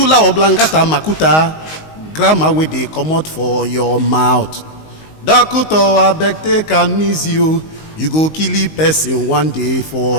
oblongata makuta. Grammar wey dey comot for your mouth. Doctor, abeg take am easy o. You go kill a person one day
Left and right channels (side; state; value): right; late; 19 ms